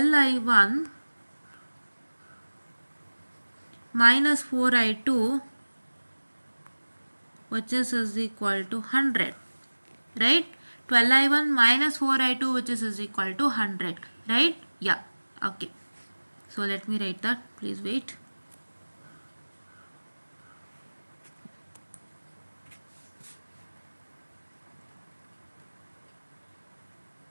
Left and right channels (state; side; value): inverted; both; correlation -1.00